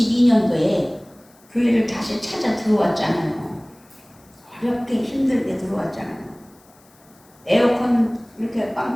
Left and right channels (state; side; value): noise; left; hiss, 30 dB below the sound